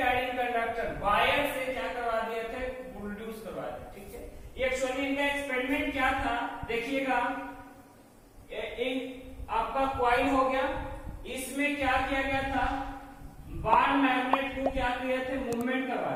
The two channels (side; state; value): both; identical; correlation 1.00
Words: कंडक्टर वायर से क्या करवा दिए थे, प्रोड्यूस करवा दिए, ठीक है। एक्चुअली इनका एक्सपेरिमेंट क्या था देखिएगा, आपका कॉइल हो गया, इसमें क्या किया गया था, बार मैग्नेट को क्या किए थे, मूवमेंट